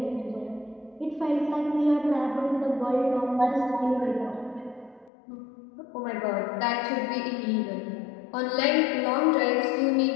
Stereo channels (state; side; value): drops out; right; at 5.1 s